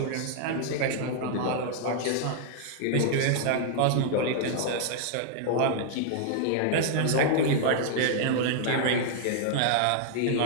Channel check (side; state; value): both; different; correlation -0.01